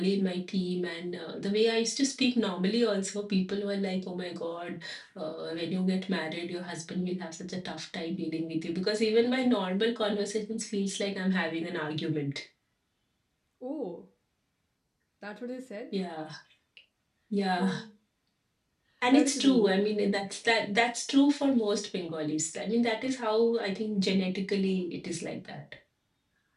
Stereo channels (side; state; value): both; identical; correlation 1.00